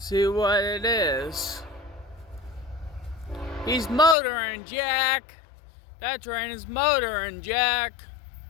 what it is. He's motoring, Jack. That train is motoring, Jack.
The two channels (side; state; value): right; drops out; at 4.2 s